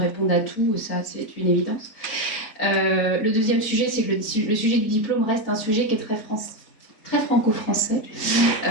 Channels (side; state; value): right; late; 4.1 ms